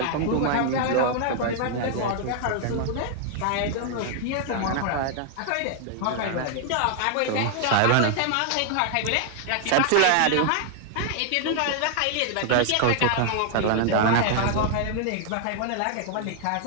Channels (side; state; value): both; different; correlation 0.00